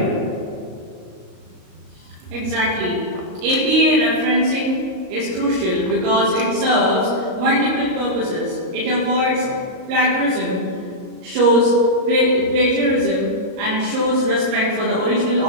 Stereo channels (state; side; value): late; left; 38 ms